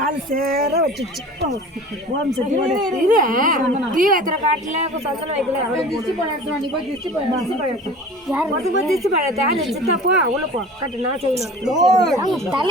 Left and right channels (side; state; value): both; normal; correlation 0.40